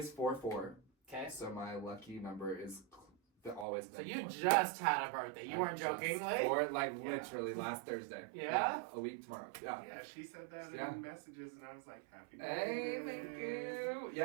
4/4. Okay. So my lucky number is always. So been you 4. just had a birthday. You weren't Just joking, Or like Yeah. literally last Thursday. Yeah? A week tomorrow. Yeah. Yeah, she said that Yeah. in messages, and I was like, happy Hey, birthday. thank you.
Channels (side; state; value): left; drops out; at 3.7 s